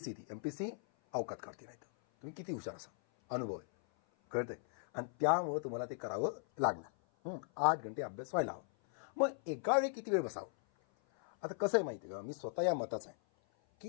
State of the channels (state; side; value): silent; right; 52 dB below the other